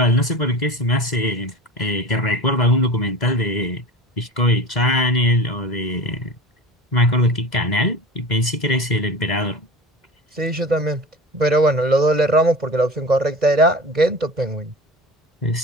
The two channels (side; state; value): both; normal; correlation 0.34